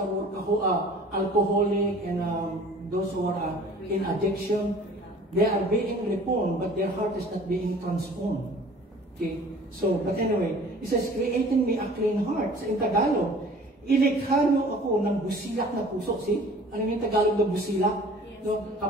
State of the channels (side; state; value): both; normal; correlation 0.48